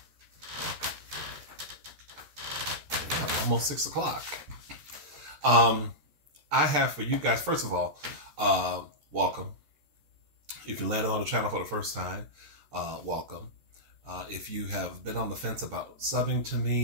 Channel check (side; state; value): left; late; 14 ms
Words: almost 6 o'clock. I have for you guys, first of all, welcome. If you landed on the channel for the first time, welcome. If you have been on the fence about subbing to